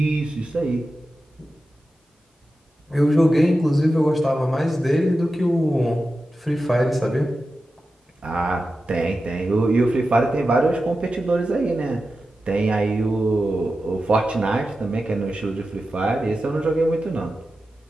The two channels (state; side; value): normal; both; correlation 0.92